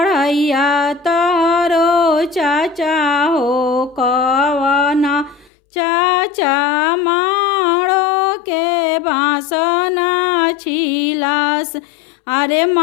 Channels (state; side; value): drops out; right; at 5.5 s